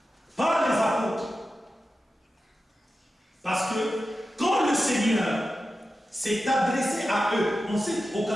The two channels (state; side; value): normal; both; correlation 0.92